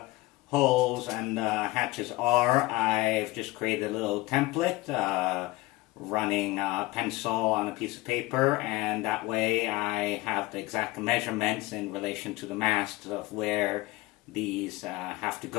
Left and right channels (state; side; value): quieter; right; 20.0 dB